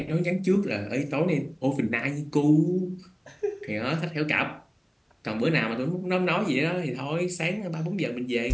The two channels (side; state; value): both; identical; correlation 1.00